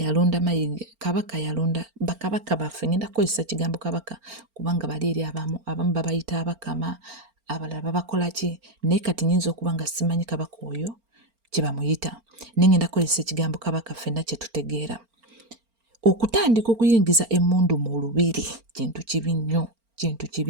Mayiga, kabaka yalonda bakabaka baffe. Ngenda kukozesa kigambo kabaka kubanga bali eri abamu babayita abakama, abalala babakola ki, naye kati nyinza okuba nga simanyi kabaka oyo kye bamuyita. Naye ngenda kukozesa ekigambo kabaka ffenna kye tutegeera. Okutandika okuyingiza emmundu mu lubiri kintu kibi nnyo, kintu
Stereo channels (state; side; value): late; left; 4.4 ms